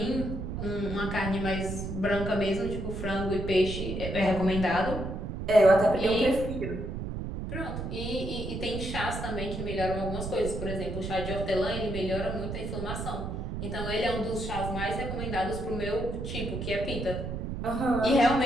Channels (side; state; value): right; noise; rumble, 5 dB below the sound